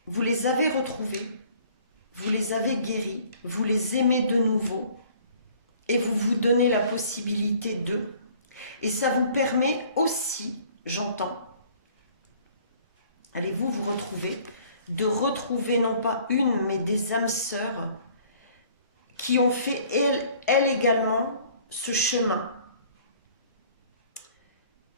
vous les avez retrouvées, vous les avez guéries, vous les aimez de nouveau et vous vous donnez la possibilité de. Et ça vous permet aussi, j'entends, allez-vous vous retrouver, de retrouver non pas une, mais des âmes sœurs qui ont fait, elles également, ce chemin.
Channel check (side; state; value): both; inverted; correlation -0.55